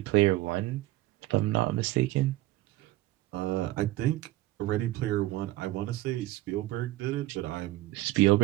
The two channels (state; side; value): quieter; left; 17.2 dB